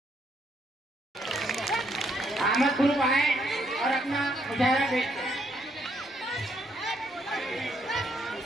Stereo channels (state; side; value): normal; both; correlation 0.72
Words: अहमद ग्रुप आए और अपना मुजाहरा पेश करें।